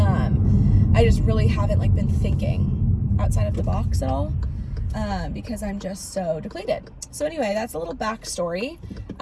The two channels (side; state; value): both; identical; correlation 1.00